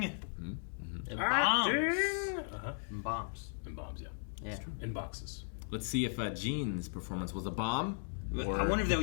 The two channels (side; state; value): right; silent; digital silence